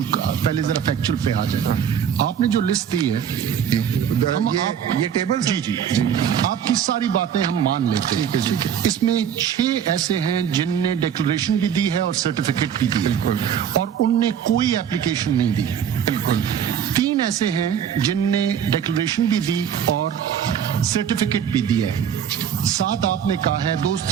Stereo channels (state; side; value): quieter; left; 8.6 dB